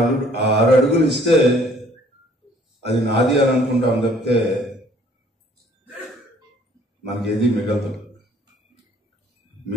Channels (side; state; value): both; normal; correlation 0.59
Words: 6 అడుగులు ఇస్తే అది నాది అని అనుకుంటాం తప్పితే మనకి ఏది మిగలదు.